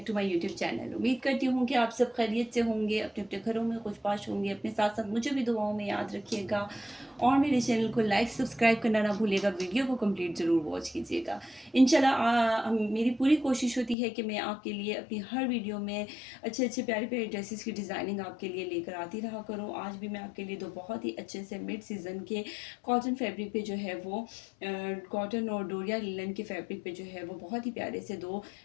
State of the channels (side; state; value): right; drops out; at 14.0 s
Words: to my YouTube channel. उम्मीद करती हूँ कि आप सब खैरियत से होंगे, अपने अपने घरों में खुशबाश होंगे। अपने साथ साथ मुझे भी दुआओं में याद रखिएगा और मेरे चैनल को लाइक सब्सक्राइब करना ना भूलिएगा। वीडियो को कंप्लीट ज़रूर वॉच कीजिएगा। इंशाल्लाह मेरी पूरी कोशिश होती है कि मैं आपके लिए अपनी हर वीडियो में अच्छे अच्छे प्यारे प्यारे ड्रेसेस की डिज़ाइनिंग आपके लिए लेकर आती रहा करूँ। आज भी मैं आपके लिए दो बहुत ही अच्छे से मिड सीज़न के कॉटन फैब्रिक पे जो है वो कॉटन और डोरिया लिनन के फैब्रिक पे जो है वो बहुत ही प्यारे से दो